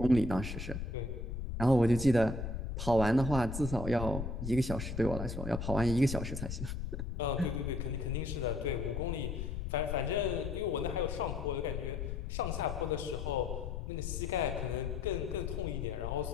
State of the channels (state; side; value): noise; left; rumble, 5 dB below the sound